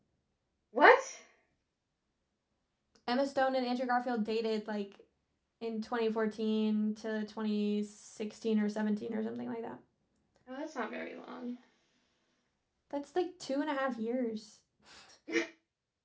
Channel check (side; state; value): both; identical; correlation 1.00